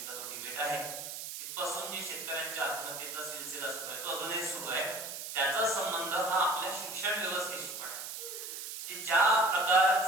तो डिबेट आहे. तिथपासून जे शेतकऱ्यांच्या आत्महत्येचा सिलसिला सुरू आहे तो अजूनही सुरू आहे. त्याचा संबंध हा आपल्या शिक्षण व्यवस्थेशी पण आहे. ज्या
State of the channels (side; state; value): right; noise; hiss, 7 dB below the sound